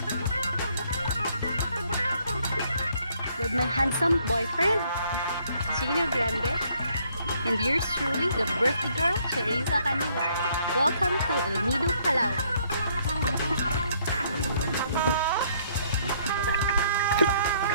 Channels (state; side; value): inverted; both; correlation -0.67